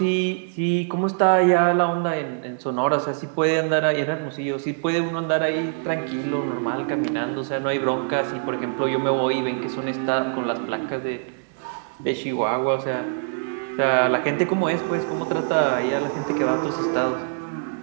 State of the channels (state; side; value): silent; left; digital silence